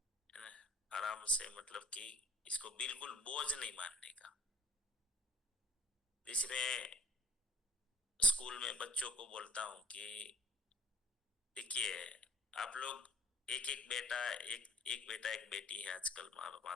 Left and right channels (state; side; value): normal; both; correlation 0.54